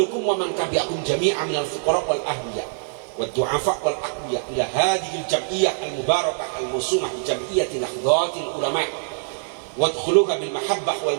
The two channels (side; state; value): left; silent; 63 dB below the other